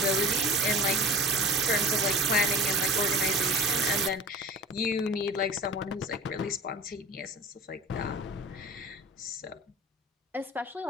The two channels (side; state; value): both; normal; correlation 0.39